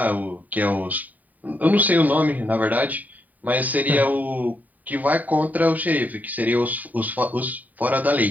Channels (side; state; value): left; late; 0.079 ms